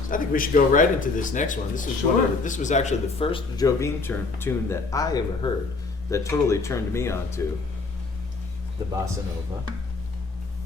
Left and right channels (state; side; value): quieter; right; 3.8 dB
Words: I think we should go right into this next one. This is Sure. this was actually the first Jobim tune that I ever heard that totally turned me on to the bossa nova,